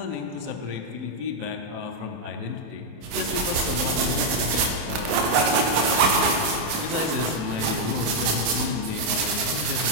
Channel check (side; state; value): left; late; 27 ms